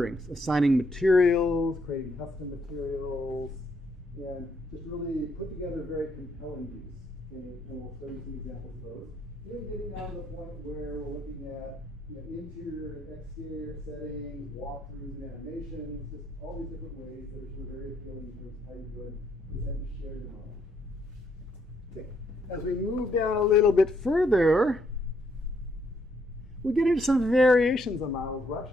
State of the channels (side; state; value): both; normal; correlation 0.72